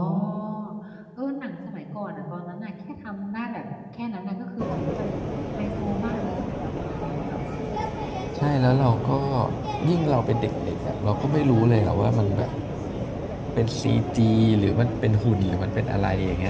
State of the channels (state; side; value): identical; both; correlation 1.00